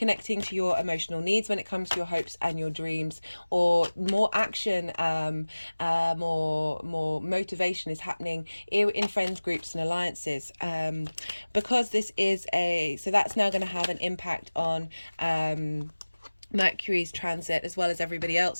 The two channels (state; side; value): inverted; both; correlation -1.00